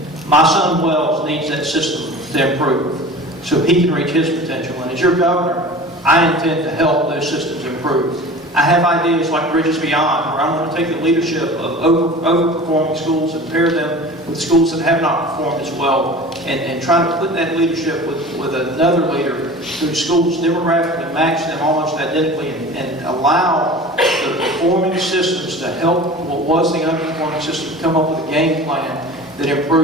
My son Wells needs that system to improve so he can reach his potential. And as your governor, I intend to help those systems improve. I have ideas like Bridges Beyond, where I'm going to take the leadership of overperforming schools and pair them with schools that have not performed as well, and try to put that leadership with another leader whose schools demographically match them almost identically, and allow the performing systems to help what was the underperforming system come up with a game plan that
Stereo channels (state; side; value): normal; both; correlation 0.39